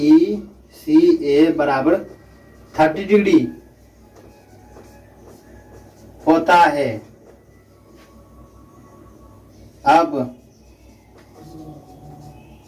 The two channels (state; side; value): identical; both; correlation 1.00